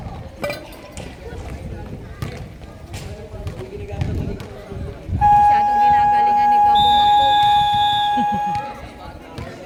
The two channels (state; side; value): identical; both; correlation 1.00